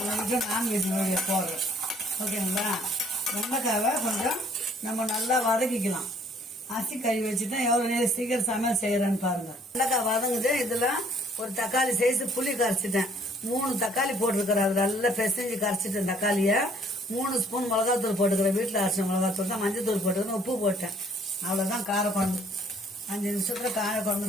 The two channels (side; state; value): both; normal; correlation 0.61